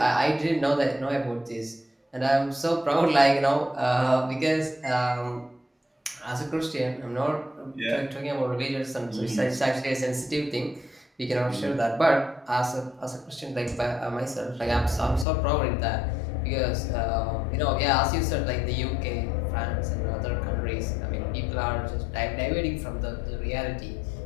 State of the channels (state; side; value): drops out; right; at 15.2 s